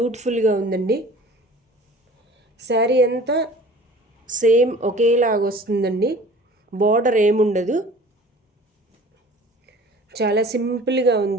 ఉందండి. శారీ అంతా సేమ్ ఒకేలాగా వస్తుందండి. బార్డర్ ఏముండదు, చాలా సింపుల్గా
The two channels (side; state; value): both; normal; correlation 0.45